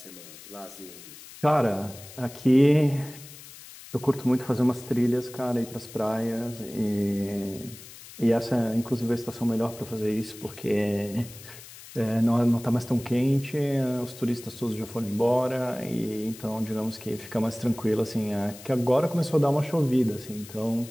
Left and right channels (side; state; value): left; noise; hiss, 17 dB below the sound